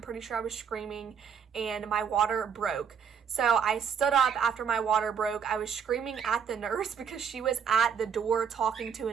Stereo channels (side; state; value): left; quieter; 7.2 dB